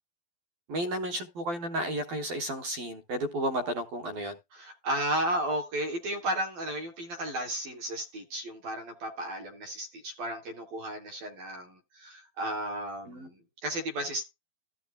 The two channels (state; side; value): late; left; 12 ms